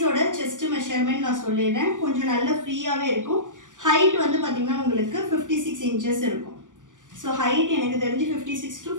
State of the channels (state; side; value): late; left; 0.87 ms